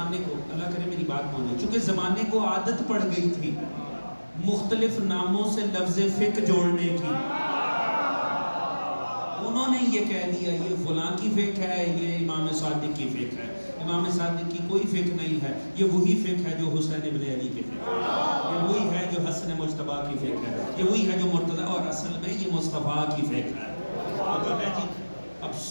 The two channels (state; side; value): inverted; both; correlation -1.00